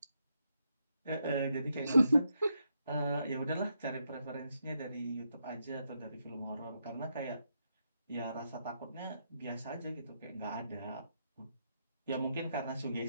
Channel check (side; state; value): both; inverted; correlation -0.80